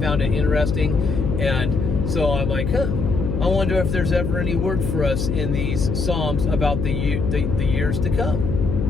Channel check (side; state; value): left; noise; hum, 1 dB below the sound